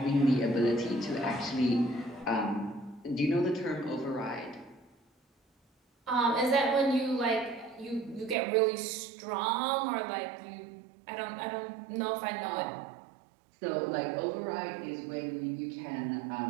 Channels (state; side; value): drops out; left; at 8.3 s